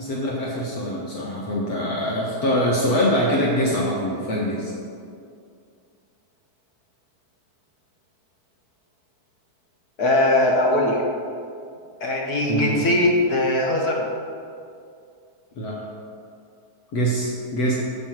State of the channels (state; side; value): late; right; 4.6 ms